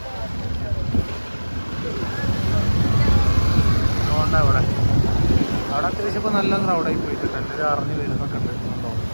അതുകൊണ്ടാണ് അവിടെ അത്യാവശ്യം ഇപ്പോൾ നല്ല ക്രൗഡായി പോയിട്ടുണ്ട്. എല്ലാവരും അറിഞ്ഞ് വരുന്നൊക്കെ ഉണ്ട്.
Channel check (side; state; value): both; inverted; correlation -1.00